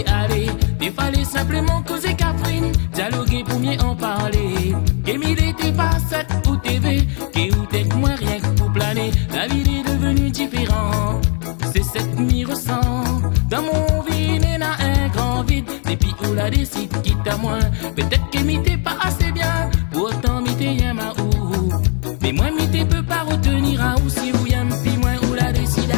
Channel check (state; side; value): quieter; right; 39.4 dB